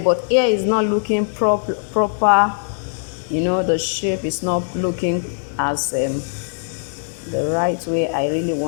but here is not looking proper. You know, the shape is not looking as the right way I really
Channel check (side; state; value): right; silent; digital silence